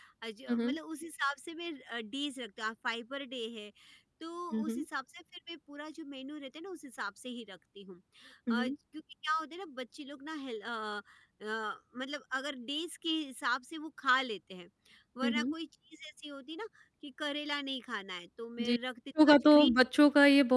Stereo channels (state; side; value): identical; both; correlation 1.00